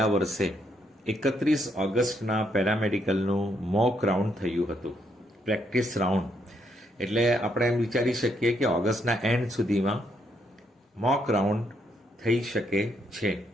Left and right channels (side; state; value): both; normal; correlation 0.75